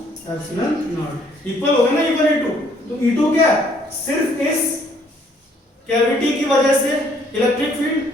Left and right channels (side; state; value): both; normal; correlation 0.63